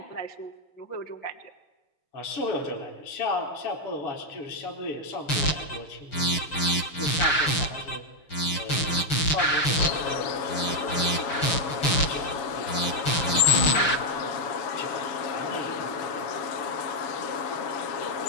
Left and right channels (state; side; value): late; right; 6.4 ms